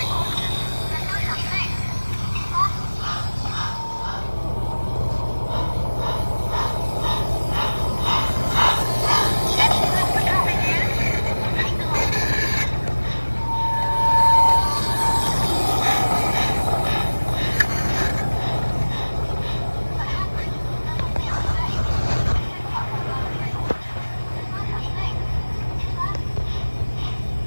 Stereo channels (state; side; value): inverted; both; correlation -1.00